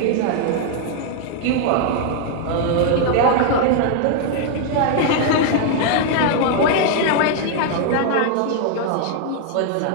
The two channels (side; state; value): both; different; correlation 0.00